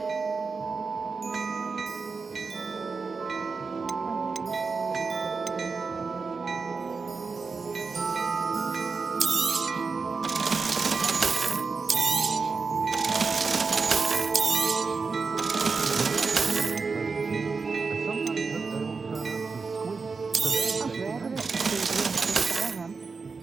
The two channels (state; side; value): quieter; left; 4.6 dB